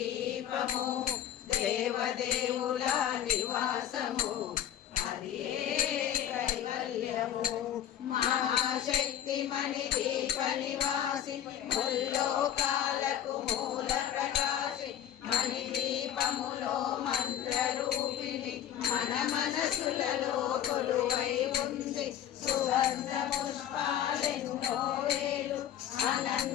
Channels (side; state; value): right; quieter; 10.5 dB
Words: దేవదేవుల నివాసము అది కైవల్యము. మహాశక్తి మణి దీప నివాసి ముల్లోకాలకు మూల ప్రకాశి మణి దీపములో మంత్ర రూపిణి మన మనసులలో కొలువై ఉంది. సుగంధ పుష్పాలెన్నో వేలు